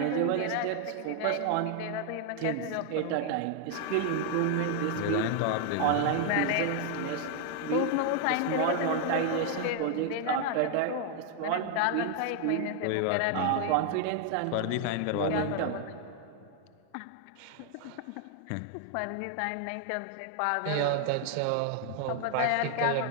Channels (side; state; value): both; different; correlation 0.00